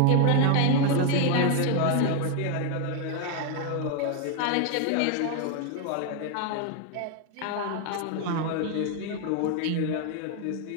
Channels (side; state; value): both; different; correlation 0.01